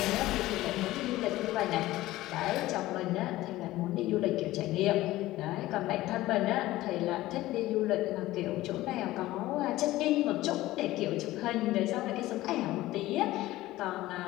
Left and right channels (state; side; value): quieter; right; 16.8 dB